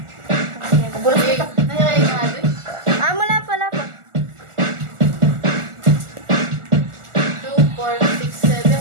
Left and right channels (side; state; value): left; late; 1.4 ms